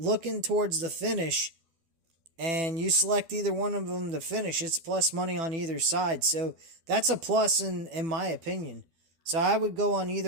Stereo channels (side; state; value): left; late; 12 ms